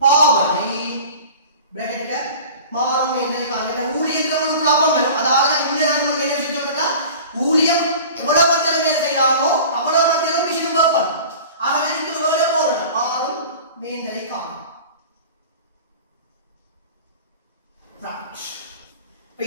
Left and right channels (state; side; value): inverted; both; correlation -0.40